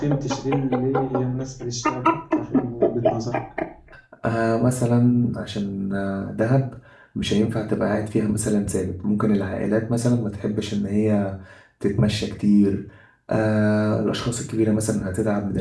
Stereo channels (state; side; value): identical; both; correlation 1.00